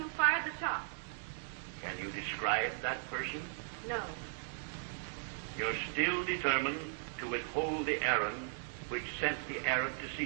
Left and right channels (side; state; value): left; silent; digital silence